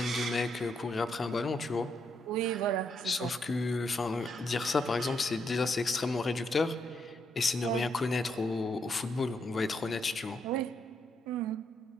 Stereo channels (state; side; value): normal; both; correlation 0.78